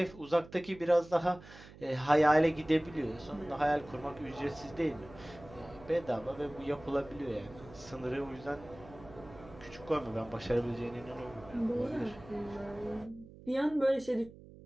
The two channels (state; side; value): noise; right; hum, 19 dB below the sound